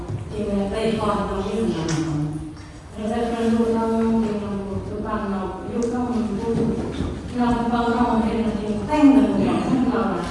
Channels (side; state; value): both; identical; correlation 1.00